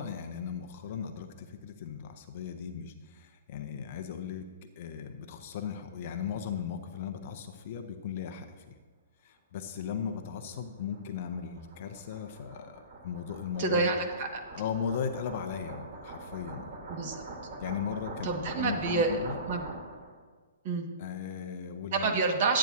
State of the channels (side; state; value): both; inverted; correlation -0.34